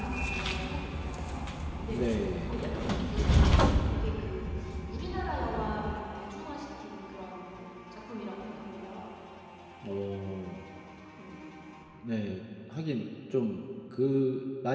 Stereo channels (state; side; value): identical; both; correlation 1.00